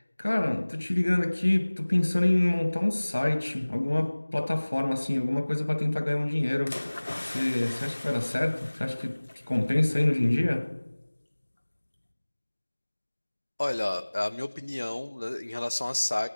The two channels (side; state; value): both; inverted; correlation -1.00